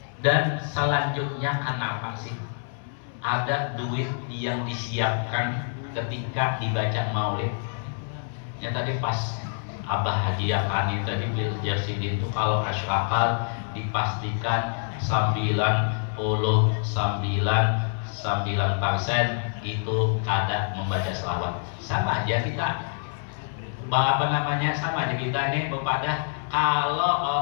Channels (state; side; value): silent; right; 61 dB below the other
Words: Dan selanjutnya, kenapa sih ada duit yang disiapkan ketika dibaca Maulid? Ya tadi pas Abah hadiahkan itu tadi bil Jasidin itu, kalau asyraqat dipastikan 99% itu kada membaca selawat. Sama aja kita, sama aja kita ini kepada kalau